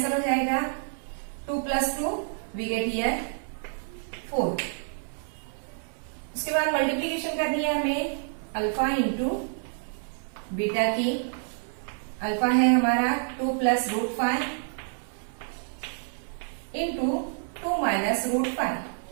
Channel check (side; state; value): left; silent; 59 dB below the other